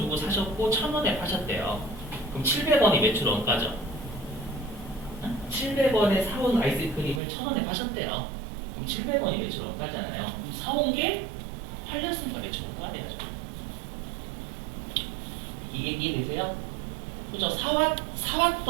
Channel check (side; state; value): left; drops out; at 7.2 s